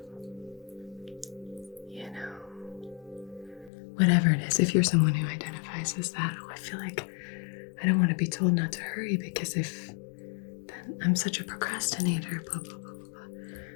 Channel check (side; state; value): right; drops out; at 3.7 s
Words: whatever it is. If you're someone who identifies as that, I feel like I don't want to be told not to hurry because if then I'm such a procrastinator, blah, blah, blah, blah,